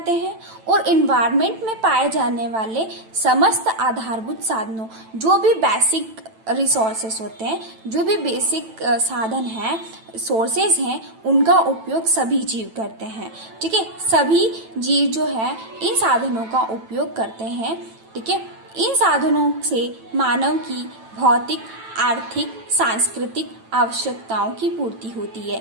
हैं, और इन्वायरमेंट में पाए जाने वाले समस्त आधारभूत साधनों, जो भी बेसिक रिसोर्सेस होते हैं, जो भी बेसिक साधन हैं, सोर्सेज हैं, उनका उपयोग सभी जीव करते हैं। ठीक है, सभी जीव जो है इन साधनों का उपयोग करते हैं। ठीक है, इन साधनों से मानव की भौतिक, आर्थिक, सांस्कृतिक आवश्यकताओं की पूर्ति होती है।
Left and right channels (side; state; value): left; late; 9.0 ms